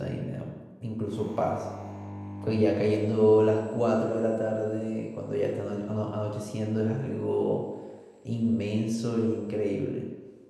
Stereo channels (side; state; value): both; identical; correlation 1.00